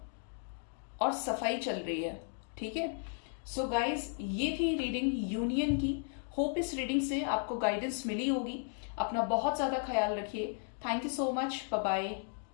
और सफाई चल रही है, ठीक है। सो गाइज, ये थी रीडिंग यूनियन की। होप इस रीडिंग से आपको गाइडेंस मिली होगी। अपना बहुत ज्यादा ख्याल रखिए। Thank you so much, bye bye,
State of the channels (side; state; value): right; silent; 55 dB below the other